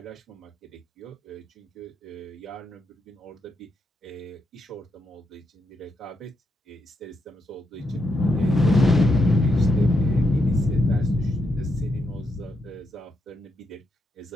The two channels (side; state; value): both; normal; correlation 0.81